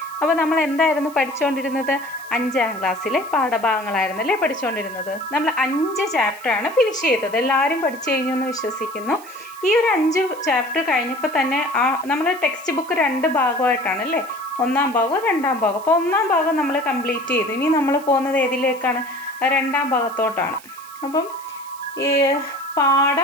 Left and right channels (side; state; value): right; noise; hiss, 21 dB below the sound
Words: അപ്പോൾ നമ്മൾ എന്തായിരുന്നു പഠിച്ചുകൊണ്ടിരുന്നത്? 5ാം ക്ലാസ്സിലെ പാഠഭാഗങ്ങളായിരുന്നല്ലേ പഠിച്ചുകൊണ്ടിരുന്നത്. നമ്മൾ 5 ചാപ്റ്ററാണ് ഫിനിഷ് ചെയ്തത്. എല്ലാവരും പഠിച്ചു കഴിഞ്ഞു എന്ന് വിശ്വസിക്കുന്നു. ഈ ഒരു 5 ചാപ്റ്റർ കഴിഞ്ഞപ്പോൾ തന്നെ നമ്മൾ ടെക്സ്റ്റ് ബുക്ക് 2 ഭാഗമായിട്ടാണ് അല്ലേ, 1ാം ഭാഗവും 2ാം ഭാഗം. അപ്പോൾ 1ാം ഭാഗം നമ്മൾ കംപ്ലീറ്റ് ചെയ്തു. ഇനി നമ്മൾ പോകുന്നത് ഏതിലേക്കാണ്? 2ാം ഭാഗത്തോട്ടാണ്. അപ്പം ഈ